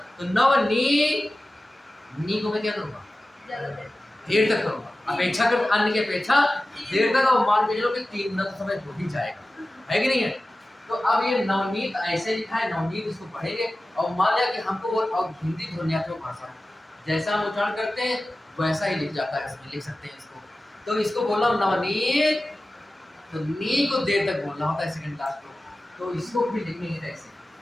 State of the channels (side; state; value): both; normal; correlation 0.95